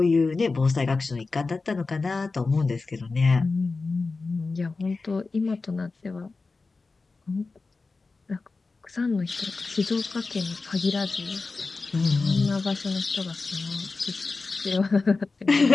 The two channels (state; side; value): quieter; right; 3.9 dB